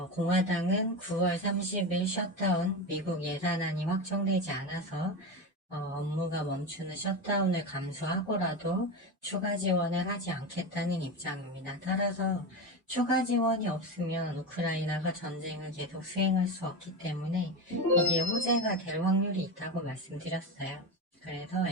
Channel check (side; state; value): both; normal; correlation 0.20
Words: 공화당은 9월 30일 셧다운 미국 예산안이 확정되지 않아서 업무가 멈추는 셧다운을 감수하고라도 추가 지원을 하지 않겠다는 입장입니다. 따라서 추가 지원이 없으면 우크라이나가 전쟁을 계속 수행할 수 없기 때문에 이게 호재가 될 확률이 있다고 말씀드렸어요. 그래서